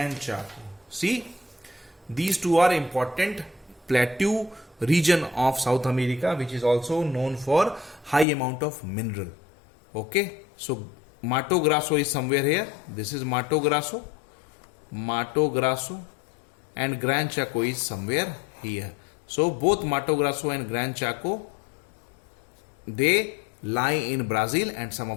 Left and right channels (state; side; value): drops out; right; at 8.2 s